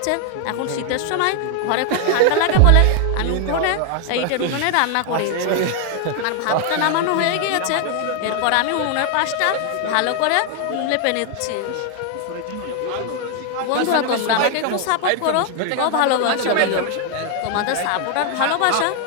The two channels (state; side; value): different; both; correlation 0.00